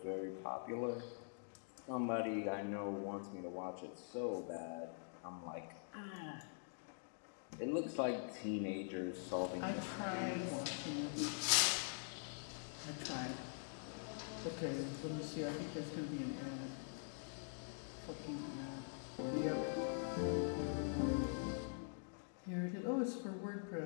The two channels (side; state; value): right; silent; digital silence